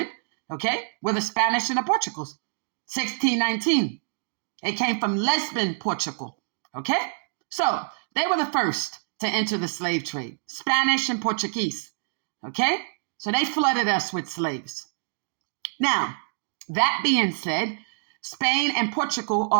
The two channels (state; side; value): silent; left; digital silence